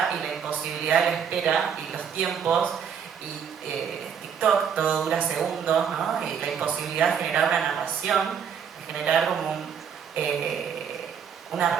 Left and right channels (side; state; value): left; quieter; 7.5 dB